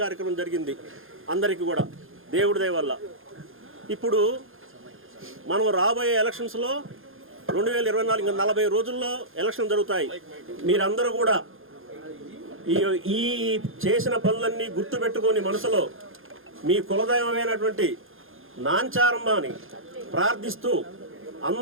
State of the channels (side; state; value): left; late; 0.60 ms